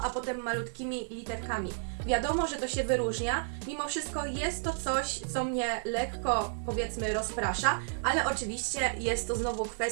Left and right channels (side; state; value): left; silent; digital silence